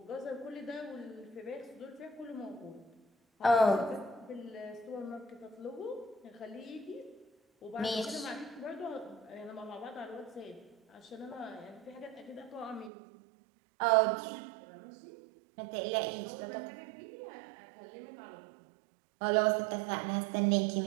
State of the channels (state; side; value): drops out; left; at 12.9 s